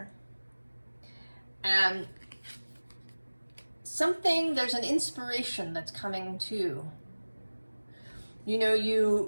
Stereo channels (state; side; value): inverted; both; correlation -1.00